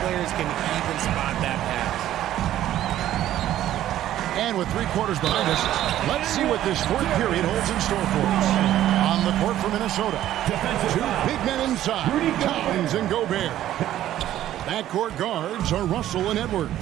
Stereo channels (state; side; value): quieter; left; 12.7 dB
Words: can even spot that pass. And with 3 quarters behind us, let's see what this fourth period holds in store for us. On the court for Minnesota, 2 big men inside, Towns and Gobert. Backcourt guards are Russell and Edwards.